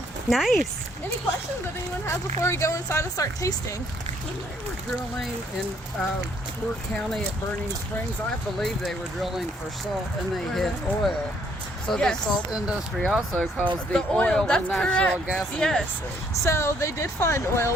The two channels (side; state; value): both; normal; correlation 0.67